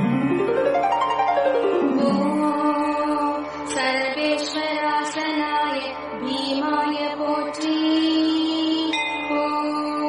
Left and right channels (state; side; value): identical; both; correlation 1.00